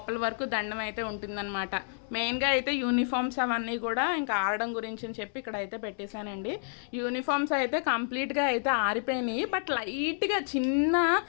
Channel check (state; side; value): silent; right; digital silence